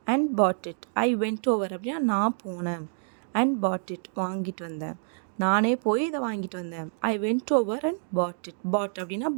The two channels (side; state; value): left; silent; digital silence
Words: and bought it. I went over அப்படின்னா நான் போனேன். and bought it வாங்கிட்டு வந்தேன். நானே போய் இதை வாங்கிட்டு வந்தேன். I went over and bought it. bought அப்படின்னா